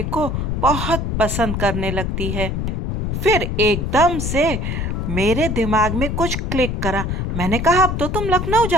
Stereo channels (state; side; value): noise; left; rumble, 1 dB below the sound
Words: को बहुत पसंद करने लगती है। फिर एकदम से मेरे दिमाग में कुछ क्लिक करा। मैंने कहा, अब तो तुम लखनऊ